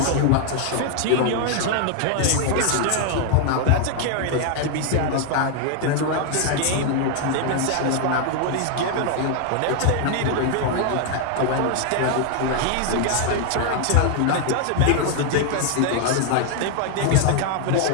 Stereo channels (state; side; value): different; both; correlation 0.00